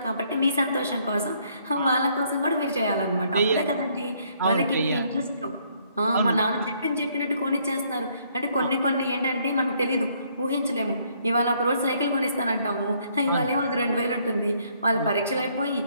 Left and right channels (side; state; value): both; inverted; correlation -0.67